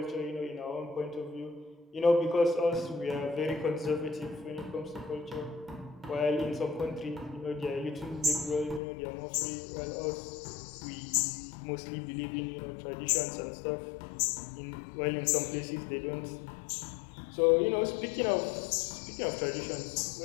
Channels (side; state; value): right; drops out; at 8.8 s